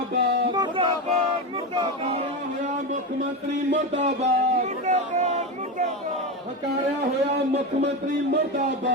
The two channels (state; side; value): normal; both; correlation 0.17